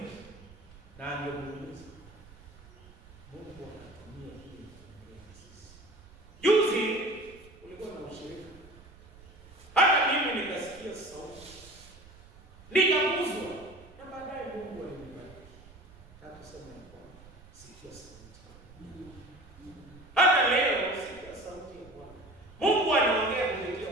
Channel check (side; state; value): right; noise; rumble, 22 dB below the sound